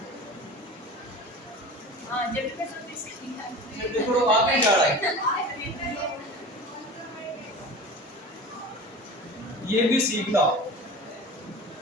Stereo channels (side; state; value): both; normal; correlation 0.35